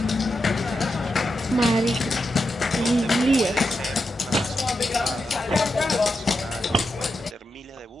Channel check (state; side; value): normal; both; correlation 0.87